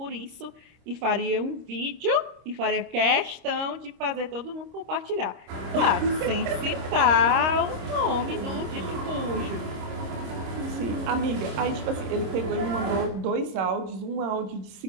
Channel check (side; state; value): left; late; 26 ms